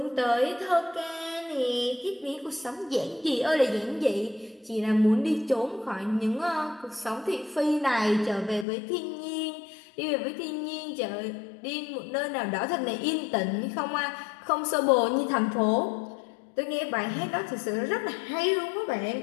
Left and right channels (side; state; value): right; drops out; at 8.7 s